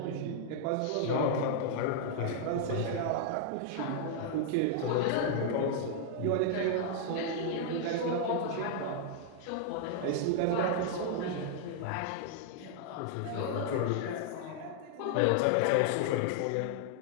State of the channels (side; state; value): both; different; correlation 0.00